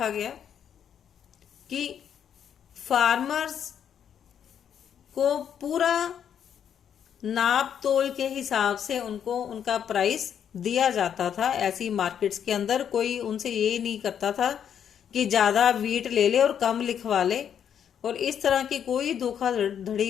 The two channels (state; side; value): quieter; right; 8.7 dB